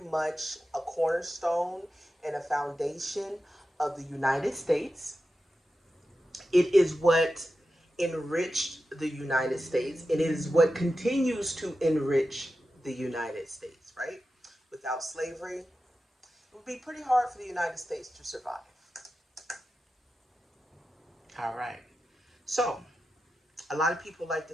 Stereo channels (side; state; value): both; normal; correlation 0.91